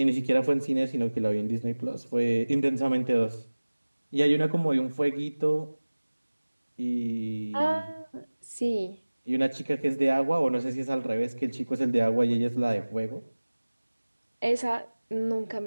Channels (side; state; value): both; inverted; correlation -1.00